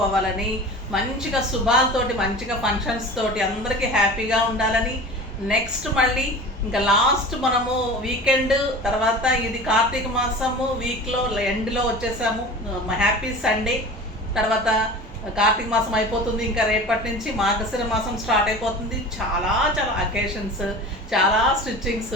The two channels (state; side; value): normal; both; correlation 0.37